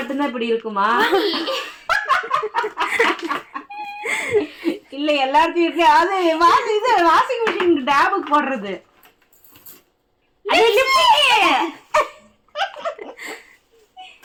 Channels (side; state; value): both; identical; correlation 1.00